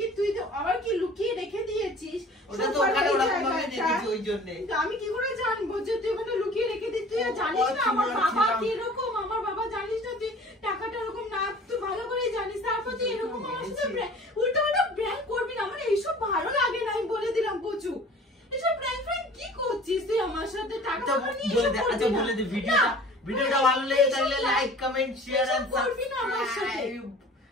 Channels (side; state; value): both; normal; correlation 0.46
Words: তুই তো আবার কি লুকিয়ে রেখে দিয়েছিস? ওটা তো সবার ওখানে ওই ওরকম ভাবে জায়গাটা। দেখেছি ওই জন্যে। কিন্তু আমি কি করে জানবো যে তুই ওখানে লুকিয়ে রেখে দিস? তুই ও, জানিস না আমার ছিলাম, বাবা ছিলাম। কি রকম, আমার বাবা জানিস না তুই টাকাটা এরকম না, তুই ভালো করে জানিস। তারপর তুই এরকম আমার সাথে উল্টো পাল্টা প্র্যাঙ্ক করবি না, আমার এইসব ভালো লাগে না, আমি বলে দিলাম প্রচুর। এসব প্র্যাঙ্ক কি করছিস তুই আমার সাথে? টাকা আচ্ছা পয়সা নিয়ে বলে এসব দে, করবি আচ্ছা না। বলে দে, না, ভিডিওটা ভালো লেগে থাকলে লাইক কমেন্ট শেয়ার এন্ড এসব করবি না আমার সাথে। সাবস্ক্রাইব।